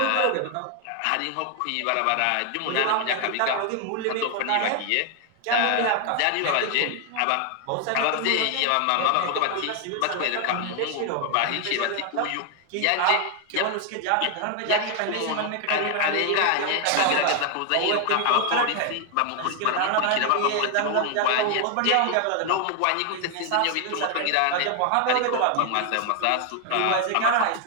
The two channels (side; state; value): both; different; correlation 0.00